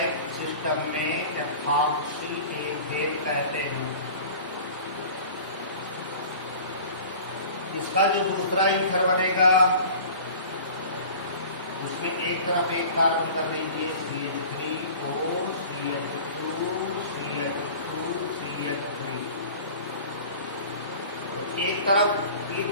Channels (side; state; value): both; inverted; correlation -0.41